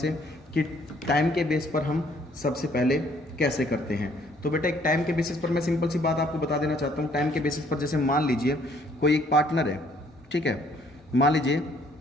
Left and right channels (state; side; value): normal; both; correlation 0.63